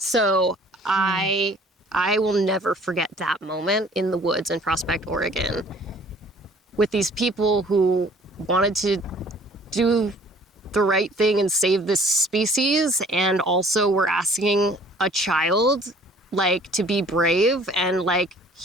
I will never forget that moment in the woods in Prospect, Oregon, with these people who wanted to do the right thing and save this species, and also were asking a child, like, to be brave and, like,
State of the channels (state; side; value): normal; both; correlation 0.54